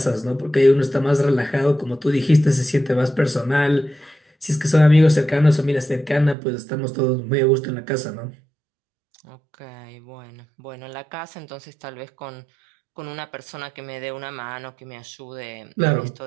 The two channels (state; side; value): drops out; left; at 6.4 s